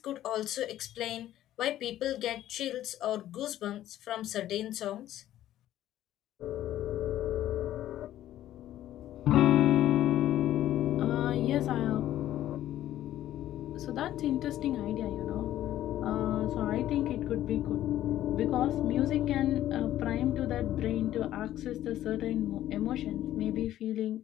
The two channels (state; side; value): quieter; right; 13.0 dB